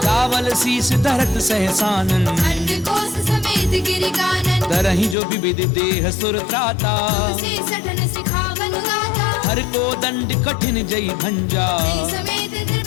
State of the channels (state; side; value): drops out; right; at 5.2 s